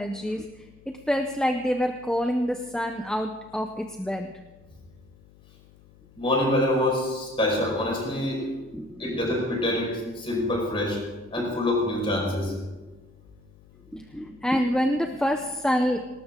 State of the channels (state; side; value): noise; left; hum, 25 dB below the sound